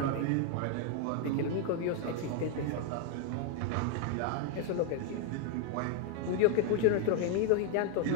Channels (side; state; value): both; different; correlation 0.01